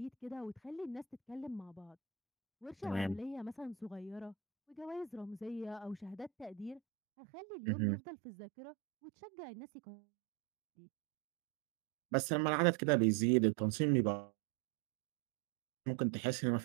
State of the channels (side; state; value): left; drops out; at 6.8 s